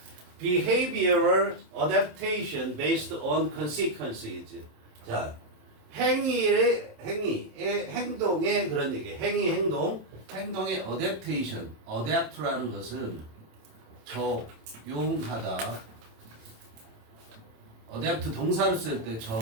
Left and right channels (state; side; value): late; left; 27 ms